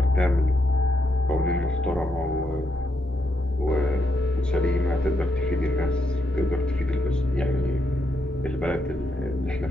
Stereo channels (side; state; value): both; normal; correlation 0.80